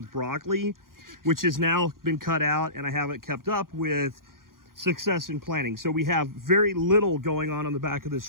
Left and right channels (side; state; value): left; late; 0.91 ms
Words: broccoli, which has now been cut out, and I haven't kept up with success in planting. So we have very little going on the back of